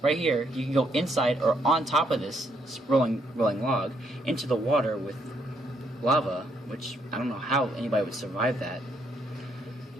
Right here, you can go inside or on top of this rolling log into the water with lava, which I don't know how anybody would survive that.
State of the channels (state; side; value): normal; both; correlation 0.73